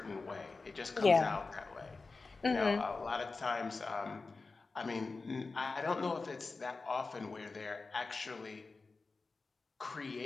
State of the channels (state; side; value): quieter; right; 3.9 dB